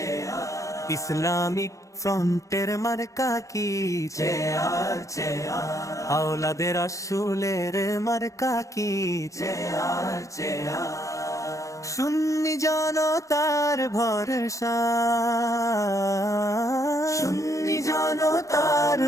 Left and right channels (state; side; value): late; right; 0.15 ms